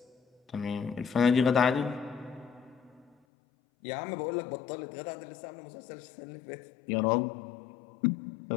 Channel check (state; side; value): drops out; right; at 3.2 s